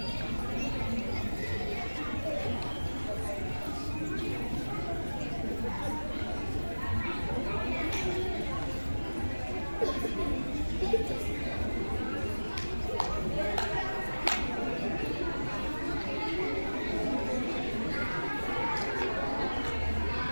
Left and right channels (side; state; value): both; inverted; correlation -1.00